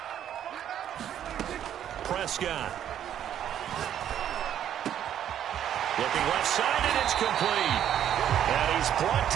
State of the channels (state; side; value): quieter; left; 10.2 dB